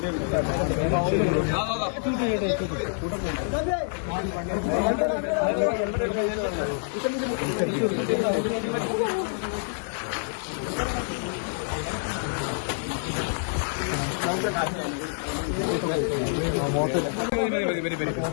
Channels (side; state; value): right; silent; digital silence